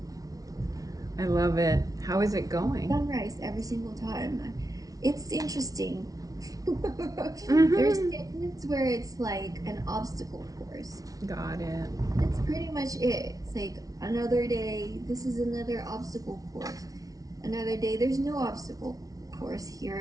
I love it. How is it going? Sunrise every single time. It's interesting. There's days where it's like an obstacle course. Got it. That's pretty much it. It's like another day, this is another obstacle course. Another day, there's no obstacle course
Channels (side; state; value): left; late; 0.18 ms